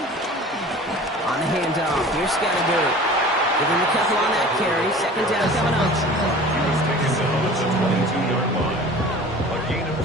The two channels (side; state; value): both; normal; correlation 0.42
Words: On the handoff. Here's Scatterberg. Give him a couple on that carry. Second down coming up. He was taken down at the 22-yard line. A gain of